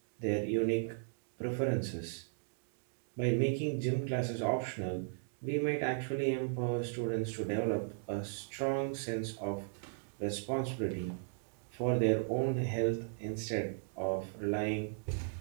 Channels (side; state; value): left; silent; digital silence